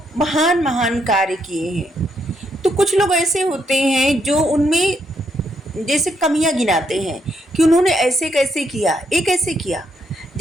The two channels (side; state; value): both; normal; correlation 0.76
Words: महान महान कार्य किए हैं, तो कुछ लोग ऐसे होते हैं जो उनमें जैसे कमियां गिनाते हैं कि उन्होंने ऐसे कैसे किया, ये कैसे किया।